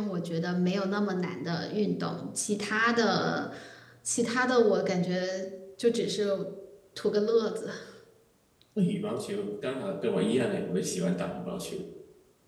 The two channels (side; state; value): both; identical; correlation 1.00